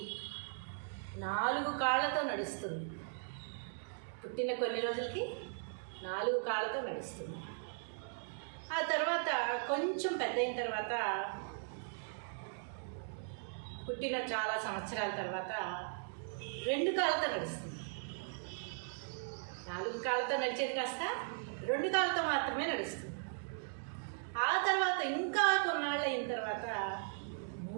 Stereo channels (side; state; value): left; silent; digital silence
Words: 4 కాళ్ళతో నడుస్తుంది. పుట్టిన కొన్ని రోజులకి 4 కాళ్ళతో నడుస్తుంది. ఆ తర్వాత కొంచెం పెద్ద అయిన తర్వాత, పుట్టిన చాలా సంవత్సరాల తర్వాత 2 కాళ్ళతో నడుస్తుంది. 4 కాళ్ళతో నడిచేది కాస్త 2 కాళ్ళతో మాత్రమే నడుస్తుంది. ఆ తర్వాత ఇంకా కొన్నాళ్ళు అయిన తర్వాత